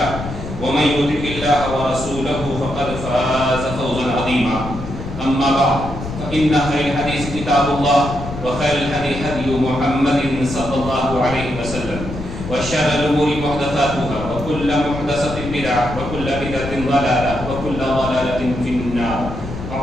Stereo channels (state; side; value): noise; left; rumble, 9 dB below the sound